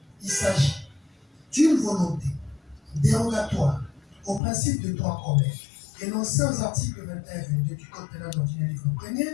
Il s'agit d'une volonté dérogatoire au principe de droit commun énoncé aux articles 21 et 22 du Code pénal ordinaire livre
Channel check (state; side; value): drops out; right; at 4.4 s